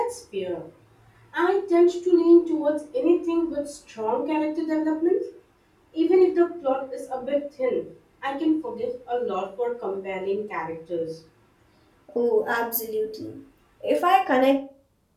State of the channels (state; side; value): identical; both; correlation 1.00